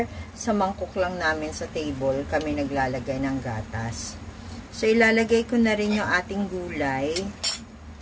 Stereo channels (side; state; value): both; identical; correlation 1.00